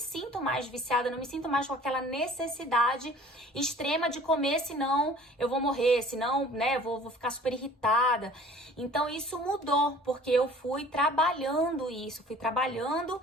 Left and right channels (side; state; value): both; normal; correlation 0.49